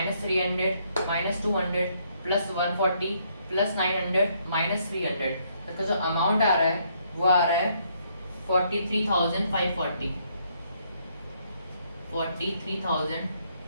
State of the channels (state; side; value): inverted; both; correlation -0.71